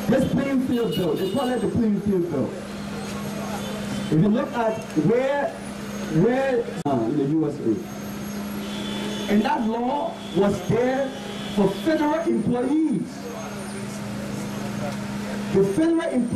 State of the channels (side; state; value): both; identical; correlation 1.00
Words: This playing field bill, they call it the playing field bill. If you look at where in the USA, and that law was there for federal employees. The federal